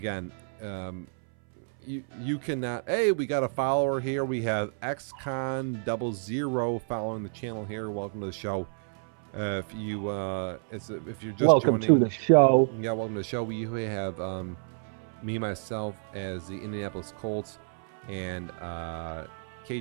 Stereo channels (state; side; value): silent; left; 58 dB below the other